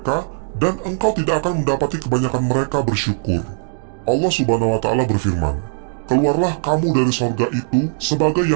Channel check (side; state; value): left; silent; digital silence